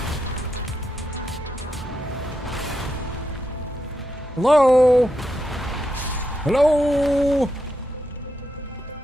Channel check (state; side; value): normal; both; correlation 0.84